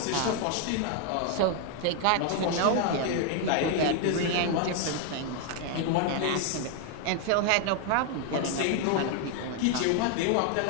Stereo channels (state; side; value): different; both; correlation 0.00